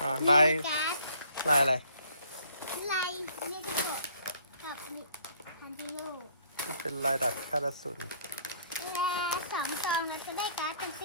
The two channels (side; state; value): both; inverted; correlation -0.61